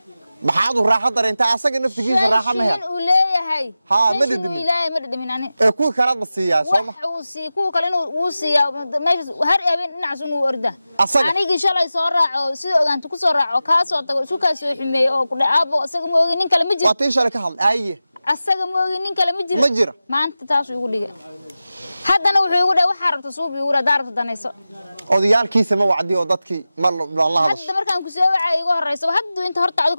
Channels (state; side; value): inverted; both; correlation -0.94